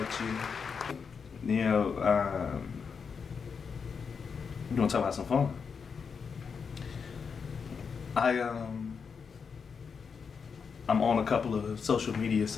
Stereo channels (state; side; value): quieter; right; 5.9 dB